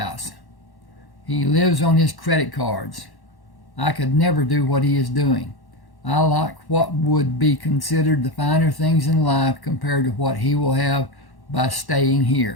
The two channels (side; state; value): right; late; 1.1 ms